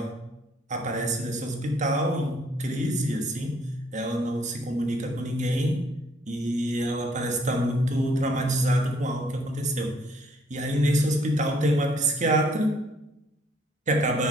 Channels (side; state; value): both; normal; correlation 0.64